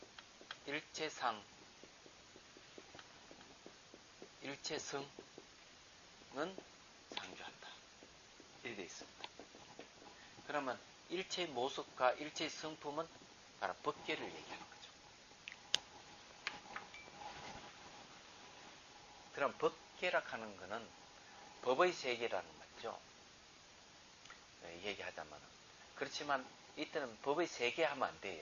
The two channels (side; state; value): both; identical; correlation 1.00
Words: 일체상, 일체성은 상주한다. 이렇게 되어 있습니다. 그러면 일체 모습과 일체 성품은 바로 법계를 얘기하는 거죠. 그럼 법계라 하는 것은 법의 세계라는 거 맞죠? 얘기하자면. 그렇지만 이때는 법의 세계 하면 안